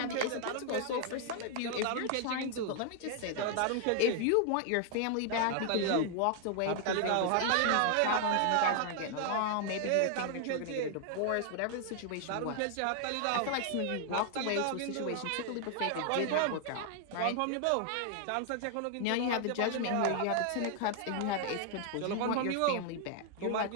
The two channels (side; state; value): both; different; correlation 0.00